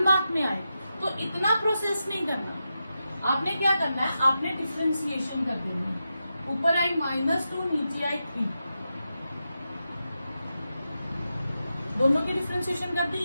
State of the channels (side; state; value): both; inverted; correlation -0.89